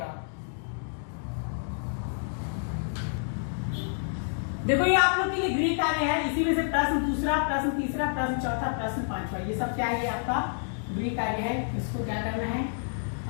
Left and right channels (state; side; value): silent; right; digital silence